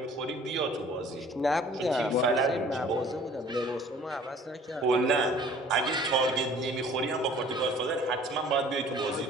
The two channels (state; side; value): normal; both; correlation 0.51